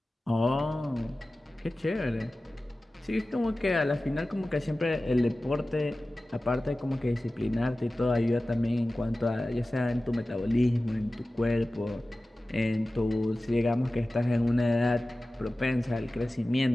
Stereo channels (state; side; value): normal; both; correlation 0.96